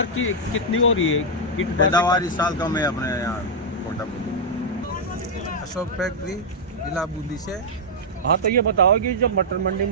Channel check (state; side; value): normal; both; correlation -0.05